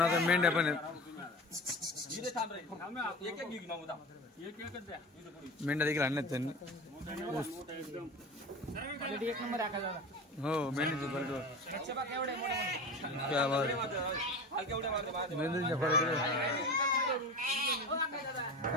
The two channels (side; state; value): both; normal; correlation 0.31